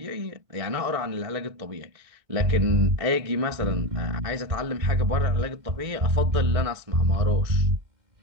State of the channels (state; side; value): late; left; 1.6 ms